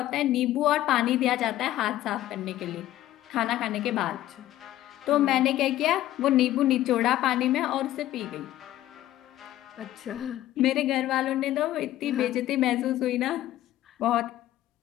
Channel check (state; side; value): quieter; right; 14.1 dB